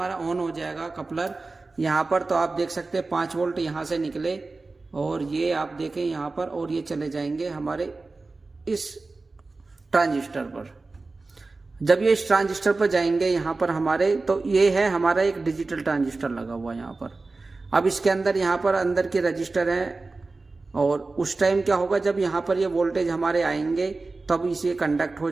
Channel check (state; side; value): quieter; left; 3.6 dB